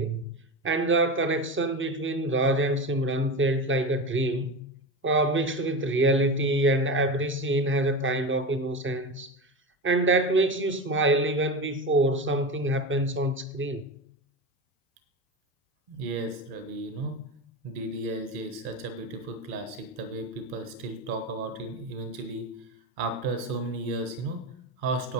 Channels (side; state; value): both; normal; correlation 0.23